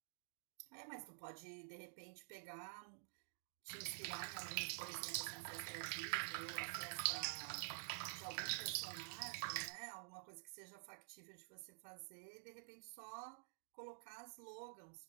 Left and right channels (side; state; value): left; silent; digital silence